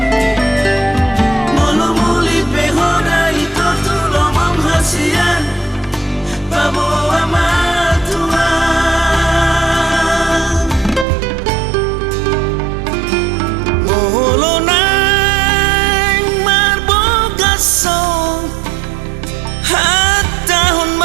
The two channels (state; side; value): drops out; left; at 11.1 s